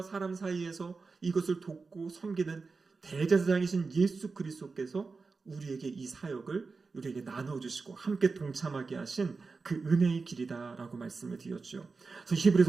사람 사이에서 이것을 돕고 섬기는 대제사장이신 예수 그리스도께서 우리에게 이 사역을 우리에게 나눠주시고 함께 동참하게 하신 그 은혜의 길이다라고 말씀을 드렸죠. 그래서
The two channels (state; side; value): quieter; left; 4.3 dB